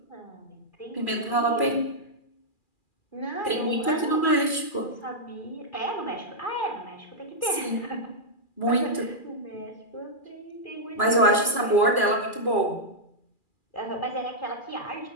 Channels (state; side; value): late; right; 2.4 ms